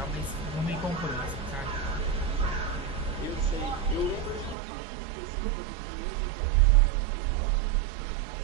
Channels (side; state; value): left; drops out; at 4.5 s